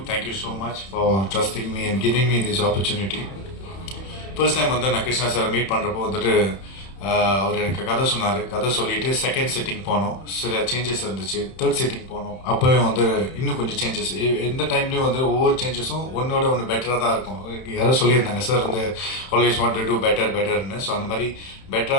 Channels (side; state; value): right; late; 31 ms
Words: so much for trusting me and giving me this opportunity. First time நான் கிருஷ்ணா சாரை மீட் பண்ணுறப்போ அவர் எனக்கு கதை சொன்னார். கதை சொல்லிட்டு செகண்ட் சிட்டிங் போனோம். சில சேஞ்சஸ் இருந்துச்சு. தேர்ட் சிட்டிங் போனோம். அப்போவே இன்னும் கொஞ்சம் சேஞ்சஸ். எந்த டைம்லேயும் ஒவ்வொரு சேஞ்சஸும் ஒன்னோட ஒன்று பெட்டராக தான் இருக்கும். யாரும் சொல்லியிருந்தாங்க sir always want to do பெட்டர்னு. ஸோ அந்த மாதிரி